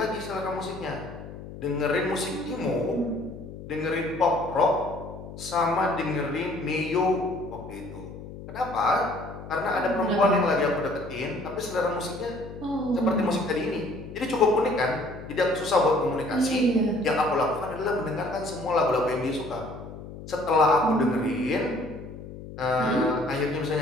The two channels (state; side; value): noise; left; hum, 13 dB below the sound